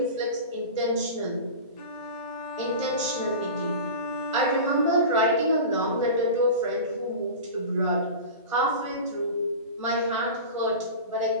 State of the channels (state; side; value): inverted; both; correlation -0.31